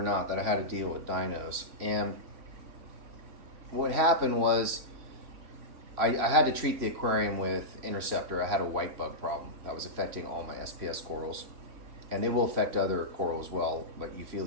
not, that I had to deal with dinos. And what happened was I had to treat the aquarium with interceptor. I had a white bug problem that was affecting all my SPS corals. And they will affect other coral as well, like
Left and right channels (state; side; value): late; left; 3.4 ms